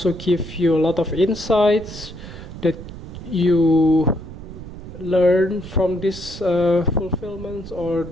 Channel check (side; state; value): right; noise; rumble, 13 dB below the sound